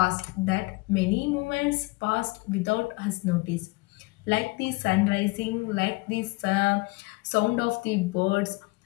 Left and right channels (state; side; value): quieter; right; 25.1 dB